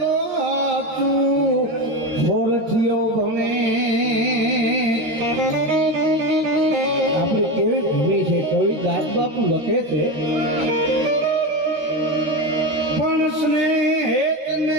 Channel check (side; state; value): left; late; 13 ms